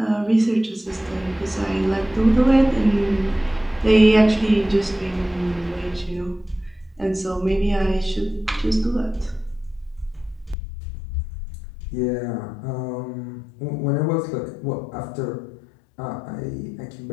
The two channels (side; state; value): right; drops out; at 10.6 s